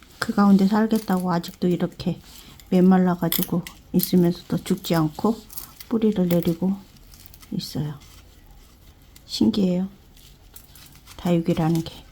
그 가운데 살겠다고 아직도 이렇게 메말라 가지고 있으면서도 죽지 않고 뿌리를 내리고 있어요. 신기해요. 다육이라는 게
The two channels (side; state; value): both; identical; correlation 1.00